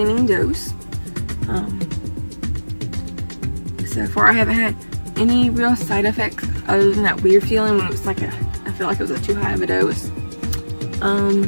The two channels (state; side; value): inverted; both; correlation -1.00